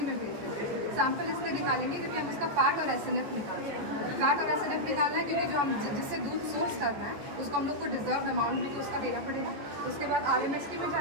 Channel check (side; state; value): left; late; 14 ms